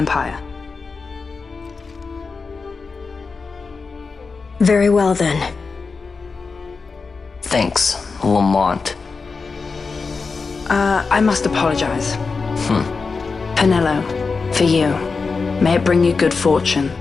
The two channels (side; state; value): right; quieter; 4.6 dB